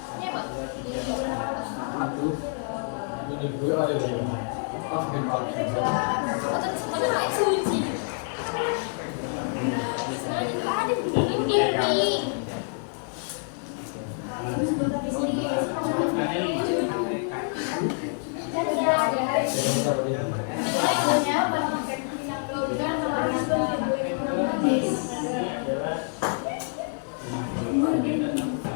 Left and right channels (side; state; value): right; silent; 60 dB below the other